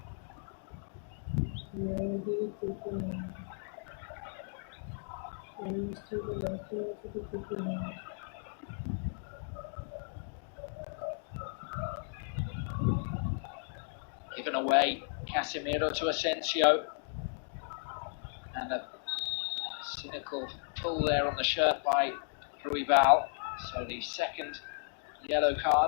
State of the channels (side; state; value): right; silent; digital silence